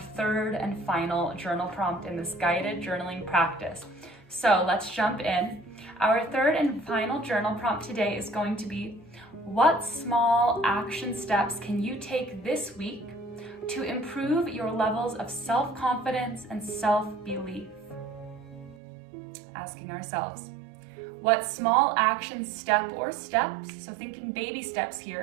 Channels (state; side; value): drops out; left; at 18.8 s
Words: 3rd and final journal prompt in this guided journaling practice. So let's jump in. Our 3rd and final journal prompt today is going to be, what small action steps can you take this week to improve your levels of self-confidence and self-belief? Asking ourselves, what small action step or steps, so thinking baby steps